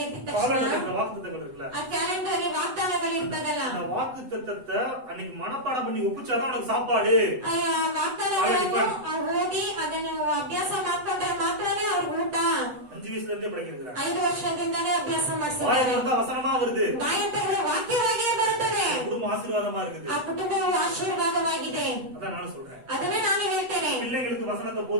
ಎದ್ದ ತಕ್ಷಣ காலையில வாக்குத்தத்தங்கள் இருக்குல்ல, ಆ ಕ್ಯಾಲೆಂಡರ್ ಅಲ್ಲಿ ವಾಗ್ದಾನಗಳು ಇರ್ತದಲ್ಲ, அந்த வாக்குத்தத்தத்தை அன்னைக்கு மனப்பாடம் பண்ணி ஒப்பிச்சாதான் உனக்கு சாப்பாடு. ಆ ವಾಗ್ದಾನಗಳನ್ನು ಓದಿ ಅದನ್ನು ಅಭ್ಯಾಸ ಮಾಡ್ಕೊಂಡ್ರೆ ಮಾತ್ರನೇ ಅವ್ರಿಗೆ ಊಟ. 5 வயசுல இருந்தே படிக்கிறாங்க. 5 ವರ್ಷದಿಂದಲೇ ಅಭ್ಯಾಸ ಮಾಡಿಸ್ತಾರೆ. வாயில வந்தா வசனமா வருது. ಬಾಯಂತಗಳು ವಾಕ್ಯವಾಗಿಯೇ ಬರುತ್ತದೆ. குடும்பம் ஆசீர்வாதமா இருக்குது. ಆ ಕುಟುಂಬವು ಆಶೀರ್ವಾದವಾಗಿದೆ. அதான் நானும் சொல்றேன். ಅದನ್ನೇ ನಾನು ಹೇಳ್ತೇನೆ. பிள்ளைங்களுக்கு வசனத்தை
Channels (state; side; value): late; left; 8.0 ms